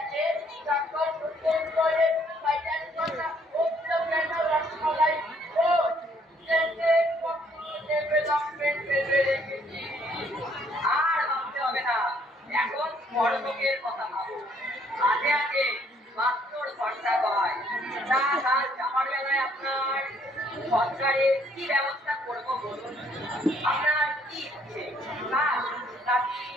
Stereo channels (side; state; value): both; normal; correlation 0.65